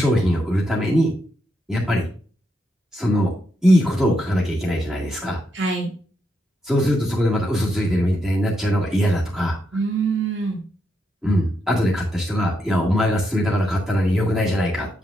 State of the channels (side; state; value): both; normal; correlation 0.81